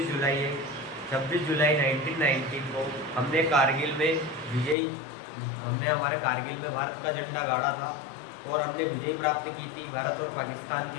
जुलाई है। 26 जुलाई 1919 को हमने कारगिल में विजय हमने हमारे कारगिल में भारत का झंडा गाड़ा था और हमने विजय प्राप्त की थी भारत और पाकिस्तान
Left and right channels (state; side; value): drops out; right; at 4.8 s